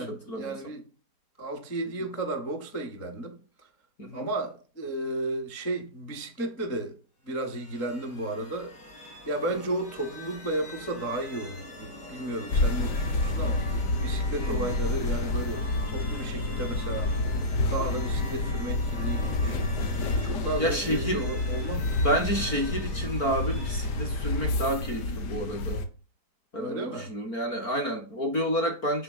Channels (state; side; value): late; right; 4.4 ms